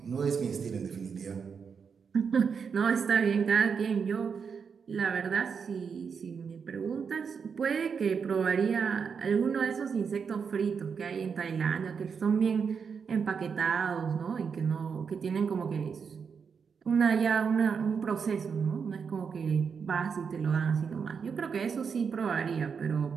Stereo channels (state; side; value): quieter; left; 6.2 dB